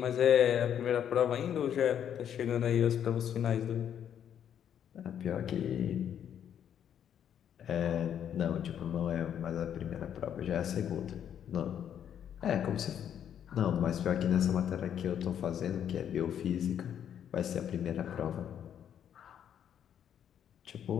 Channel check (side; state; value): right; quieter; 9.3 dB